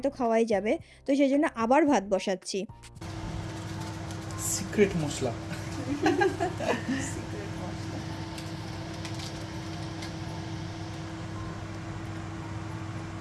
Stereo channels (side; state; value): both; identical; correlation 1.00